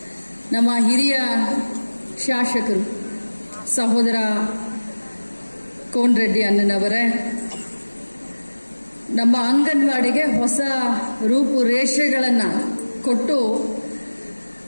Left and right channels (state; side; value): inverted; both; correlation -1.00